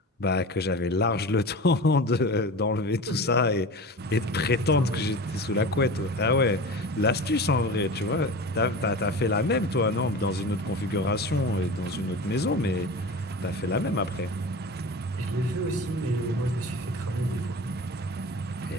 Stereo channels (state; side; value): normal; both; correlation 0.32